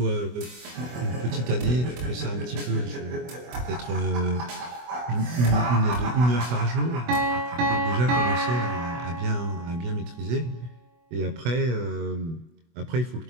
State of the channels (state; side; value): late; left; 24 ms